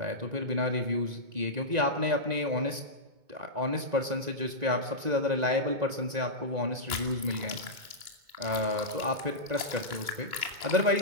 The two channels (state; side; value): late; left; 2.2 ms